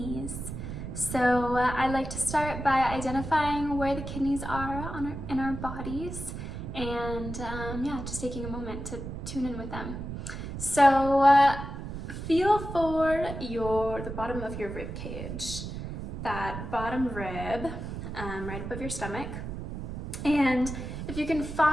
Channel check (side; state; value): right; noise; rumble, 7 dB below the sound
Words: So I'd like to start by identifying where the kidneys are in our bodies and just taking a moment to tune in with them. So feel for the bottom of your rib cage, that bottom rib right above your stomach. And if you can